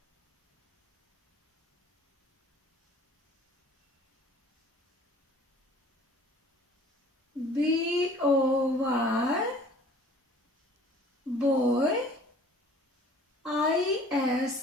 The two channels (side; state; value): both; normal; correlation 0.50